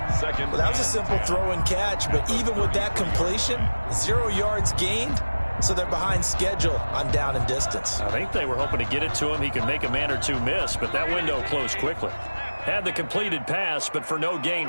Well, that was a simple throw and catch, but even with that completion, 0 yards gained, so they're behind schedule on down and distance. I think they were hoping to get it to him. He could make a man or two miss, but that window closed quickly. Had the completed pass, but for no gain,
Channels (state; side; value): inverted; both; correlation -1.00